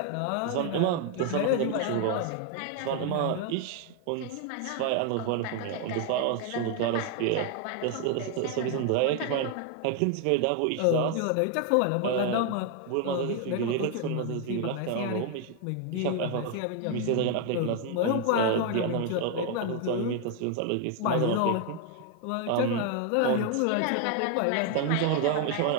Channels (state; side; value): different; both; correlation 0.01